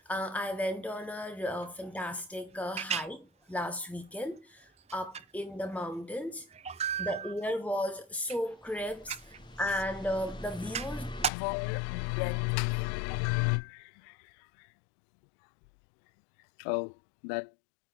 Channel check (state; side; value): drops out; right; at 11.3 s